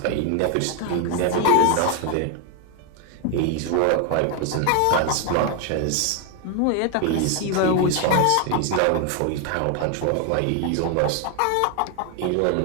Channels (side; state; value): both; different; correlation 0.01